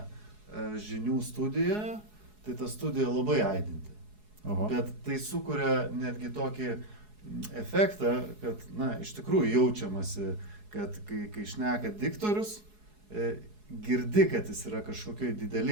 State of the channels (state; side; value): late; left; 4.7 ms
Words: žinių studijoje, tai ta studija labai aidinti. Oho. Bet tai sukuria netgi tokį efektą, kad, na, iš tikrųjų jaučiamasi, kad kai šneka diktorius, girdi, kad jis yra kažkokioj